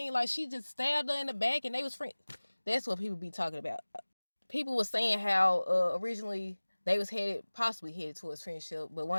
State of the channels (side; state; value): both; inverted; correlation -1.00